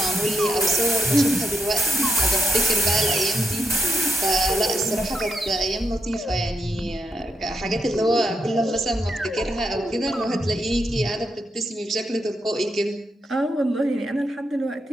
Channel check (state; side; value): normal; both; correlation 0.81